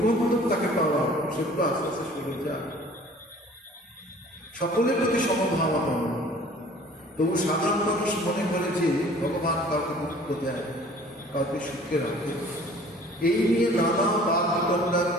তাকে পাওয়া, সেগুলো আস্তে আস্তে সরে যায়। সকলের প্রতি সমভাবা পাওয়া। তবু সাধারণ মানুষ মনে করে যে ভগবান কাউকে মুক্ত দেয়, কাউকে সুখে রাখে, এই নিয়ে নানা বাদ বিতণ্ডা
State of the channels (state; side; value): normal; both; correlation 0.50